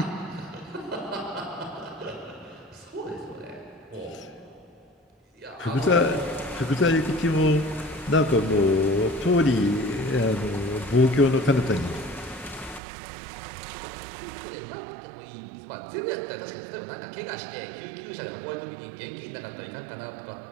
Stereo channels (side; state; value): left; drops out; at 12.8 s